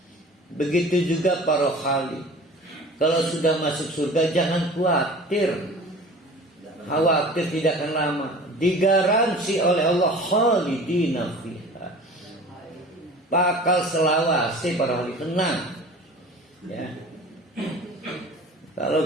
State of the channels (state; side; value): normal; both; correlation 0.42